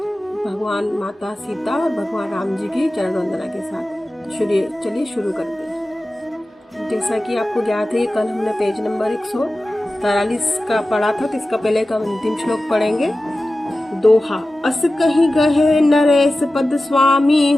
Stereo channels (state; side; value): normal; both; correlation 0.95